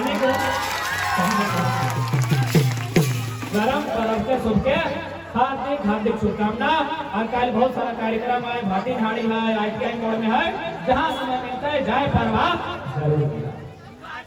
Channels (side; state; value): both; identical; correlation 1.00